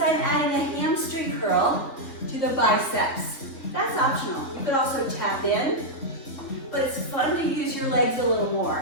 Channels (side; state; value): right; late; 3.8 ms